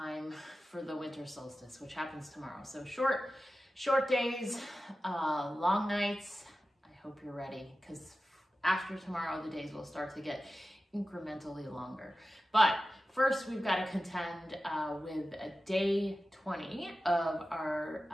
for the winter solstice, which happens tomorrow. So short days, long nights. I hope you're ready, because after tomorrow, the days will start to get incrementally longer. But first, we've got to contend with a day 20 of our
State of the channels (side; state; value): both; normal; correlation 0.94